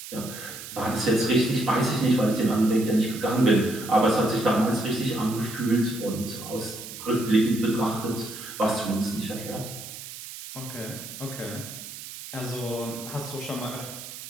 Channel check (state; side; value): noise; right; hiss, 12 dB below the sound